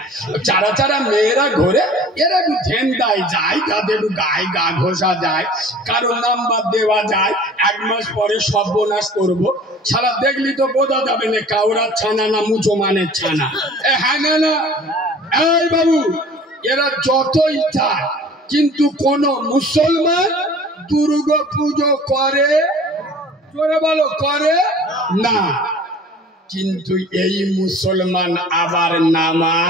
চারা চারা মেয়েরা ঘুরে, এরা একটু ঝেন্ডায় যায়, তাদের একটু গায়ে গা ঘষা যায়, কারো নাম্বার দেওয়া যায়, 1 মাস পরে সর্বনাশ করবো। সারা দেখলি তো বোঝা যাবে না কাউরার ছানা না মুসলমানের ছানা। হ্যাঁ না না, এই বাবু, এরা যতই চায়, কিন্তু কোন মুসলমান দুর্গা পুজো করে, জোরে বলো, করে না। কিন্তু এই মুসলমান আবার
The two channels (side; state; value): both; normal; correlation 0.47